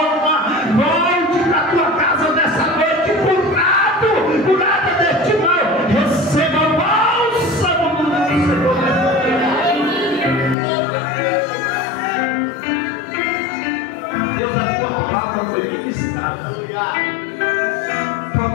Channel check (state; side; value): drops out; right; at 10.6 s